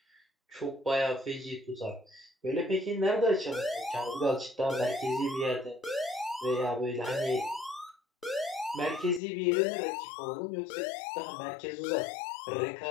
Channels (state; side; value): drops out; right; at 9.2 s